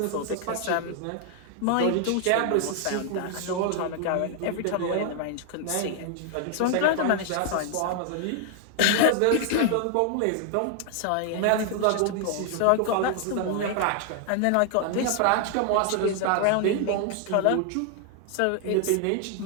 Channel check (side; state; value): both; different; correlation 0.00